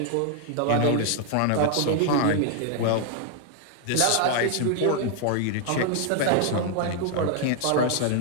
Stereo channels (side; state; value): both; different; correlation 0.00